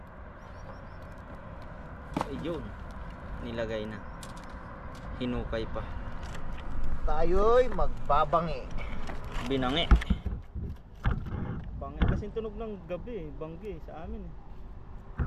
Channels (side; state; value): both; identical; correlation 1.00